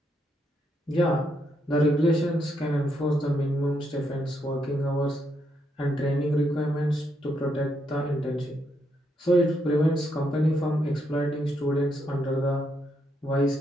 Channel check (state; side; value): normal; both; correlation 0.77